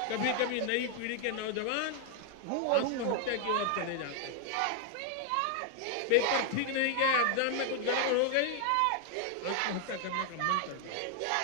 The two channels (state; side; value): different; both; correlation 0.00